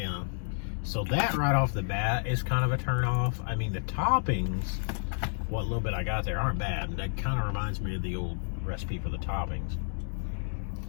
So that right off the bat is kind of a turn off. I mean, the toppings, what little bit I got there, aren't bad. That kind of reminds me of the old recipe for the toppings.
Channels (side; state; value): right; silent; 58 dB below the other